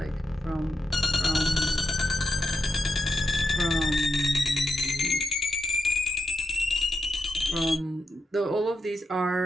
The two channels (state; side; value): normal; both; correlation 0.86